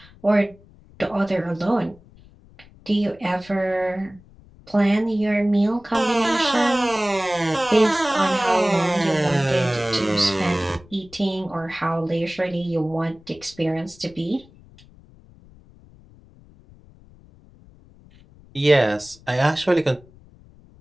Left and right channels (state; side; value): noise; left; rumble, 25 dB below the sound